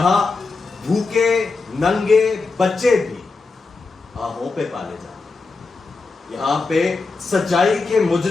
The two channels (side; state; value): right; quieter; 4.0 dB